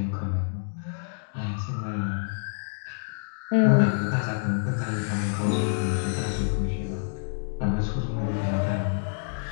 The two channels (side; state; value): right; silent; 60 dB below the other